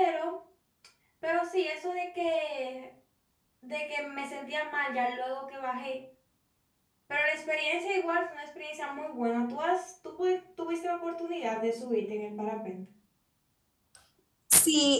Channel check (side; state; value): both; identical; correlation 1.00